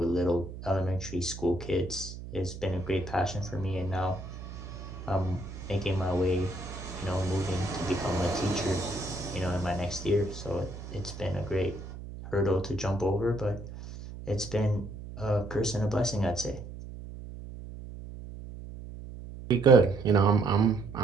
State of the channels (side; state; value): right; noise; hum, 11 dB below the sound